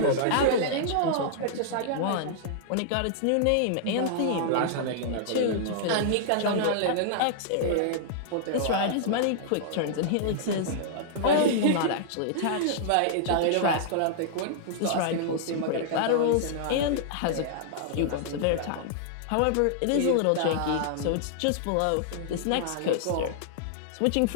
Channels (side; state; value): both; different; correlation -0.01